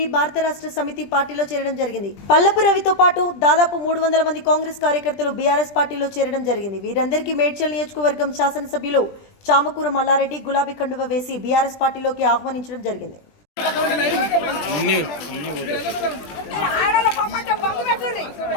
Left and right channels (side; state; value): right; late; 20 ms